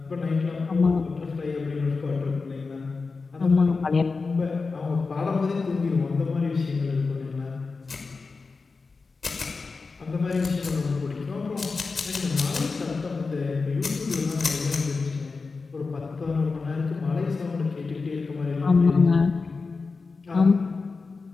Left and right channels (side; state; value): right; quieter; 4.3 dB